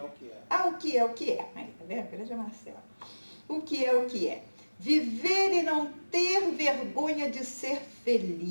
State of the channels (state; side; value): inverted; both; correlation -1.00